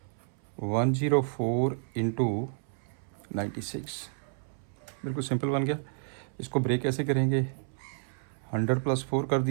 104 इंटू 96, बिल्कुल सिंपल बन गया। इसको ब्रेक कैसे करेंगे, 100 प्लस 4 कर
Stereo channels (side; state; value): left; silent; 57 dB below the other